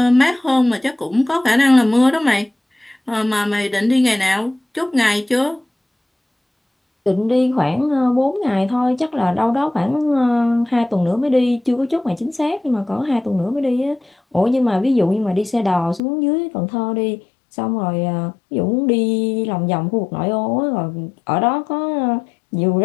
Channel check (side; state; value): right; drops out; at 16.0 s